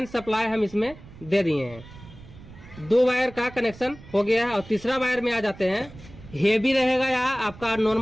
सप्लाई हम इसमें दे दिए हैं। 2 वायर का कनेक्शन हो गया है। और तीसरा वायर में आ जाते हैं। हेवी रहेगा या आपका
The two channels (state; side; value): noise; right; rumble, 19 dB below the sound